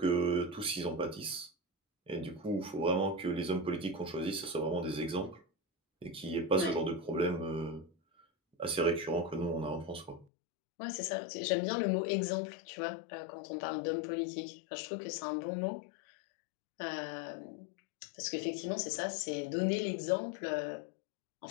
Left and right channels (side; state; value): right; drops out; at 10.2 s